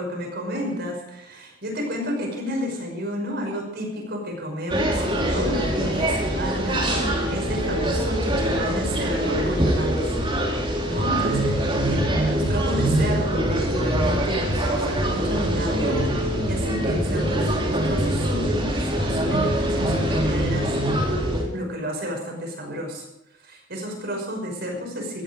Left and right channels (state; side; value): normal; both; correlation 0.56